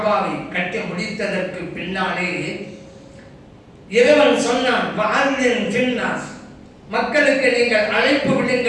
கட்டி முடித்ததற்கு பின்னாலே இறைவன் சொன்னான், வஅذின் ஃபின்னாஸ், மக்களுக்கு நீங்கள் அழைப்பு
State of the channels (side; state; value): both; identical; correlation 1.00